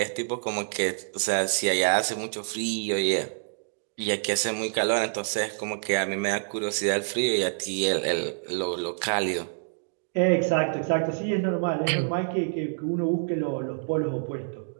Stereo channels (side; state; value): left; silent; digital silence